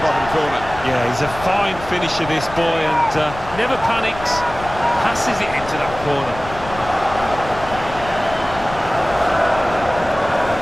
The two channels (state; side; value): noise; left; rumble, 13 dB below the sound